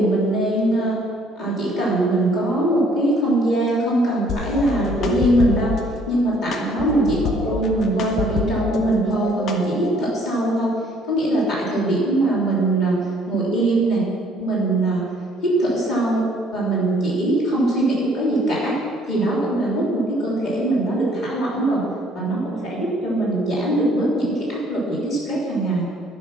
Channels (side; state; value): both; normal; correlation 0.61